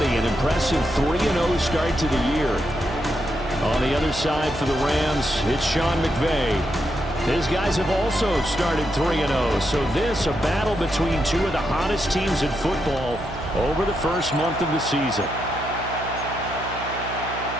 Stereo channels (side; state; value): right; noise; hum, 11 dB below the sound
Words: an impressive 3-0 start to the year. On the other side for the Rams, it's Sean McVay. His guys have also started 3-0, so this a battle between two of the hottest teams in football over the first month of the season.